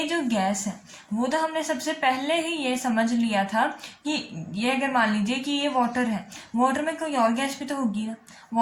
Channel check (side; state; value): both; identical; correlation 1.00